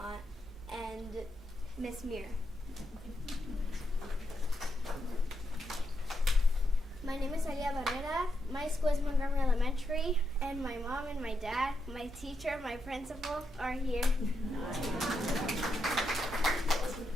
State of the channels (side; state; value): both; normal; correlation 0.82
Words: and Miss Mir. My name is Alia Barrera. My school is Montgomery Elementary, and my mom and my dad, my teacher, my principal are here.